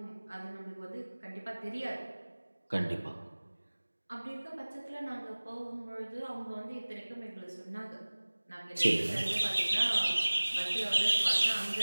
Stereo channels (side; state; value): both; inverted; correlation -1.00